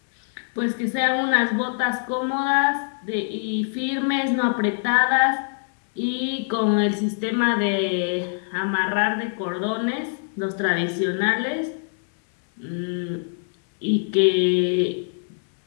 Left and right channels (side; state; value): right; silent; 63 dB below the other